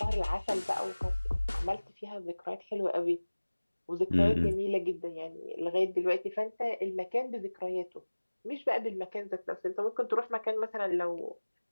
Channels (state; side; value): inverted; both; correlation -1.00